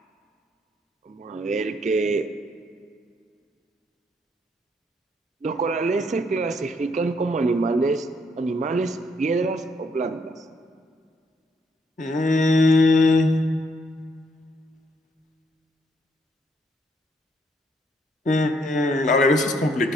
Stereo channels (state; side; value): normal; both; correlation 0.71